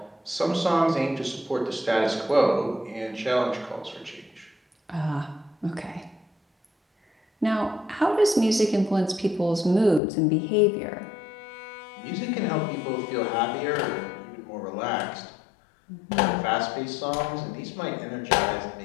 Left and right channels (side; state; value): right; drops out; at 10.0 s